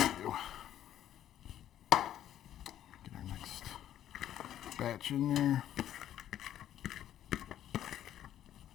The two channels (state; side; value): quieter; right; 11.4 dB